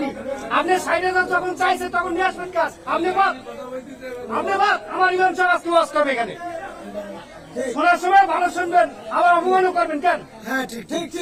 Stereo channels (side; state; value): both; identical; correlation 1.00